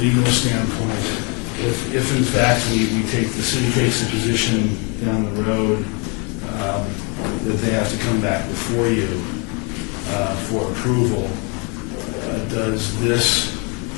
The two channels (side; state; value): right; quieter; 33.5 dB